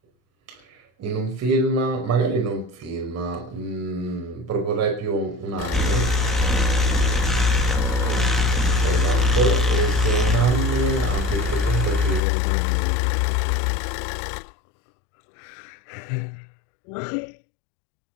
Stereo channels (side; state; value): right; drops out; at 12.2 s